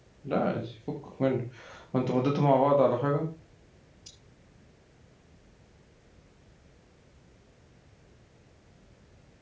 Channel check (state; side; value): identical; both; correlation 1.00